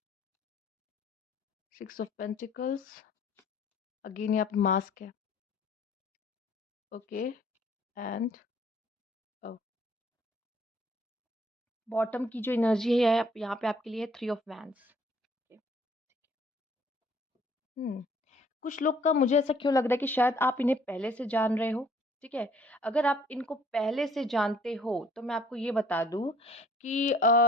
six of pentacles, again यहाँ पे मास्क है। ओके एंड बॉटम की जो एनर्जी है यहाँ पे आपके लिए थ्री ऑफ वैंड्स। हम्म कुछ लोग का मुझे ऐसा क्यों लग रहा है कि शायद आप इन्हें पहले से जान रहे हो, ठीक है? अगर आप इनको पहले से जानते हो तो मैं आपको ये बता दूं कि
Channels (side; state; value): both; normal; correlation 0.59